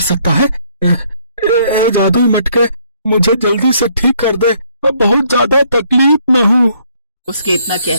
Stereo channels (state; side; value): inverted; both; correlation -0.67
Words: सकता है? जादुई मटके, मुझे जल्दी से ठीक कर दे, मैं बहुत ज्यादा तकलीफ में हूँ। उसके इतना